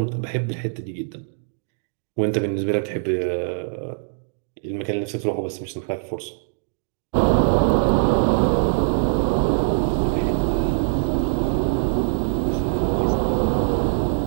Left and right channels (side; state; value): left; silent; digital silence